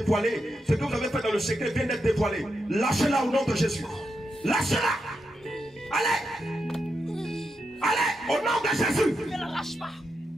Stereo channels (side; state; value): both; normal; correlation 0.85